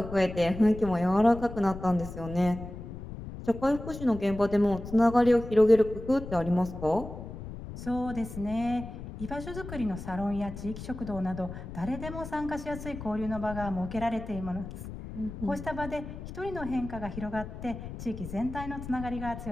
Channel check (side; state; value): left; noise; rumble, 10 dB below the sound